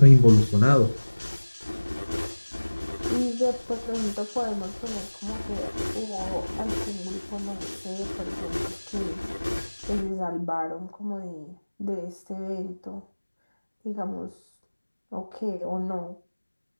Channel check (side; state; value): both; inverted; correlation -1.00